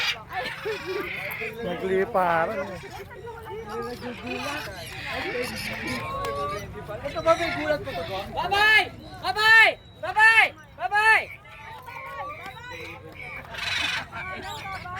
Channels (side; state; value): both; identical; correlation 1.00